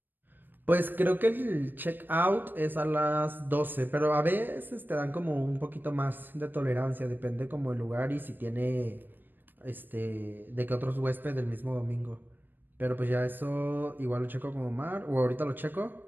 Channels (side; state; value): left; late; 0.093 ms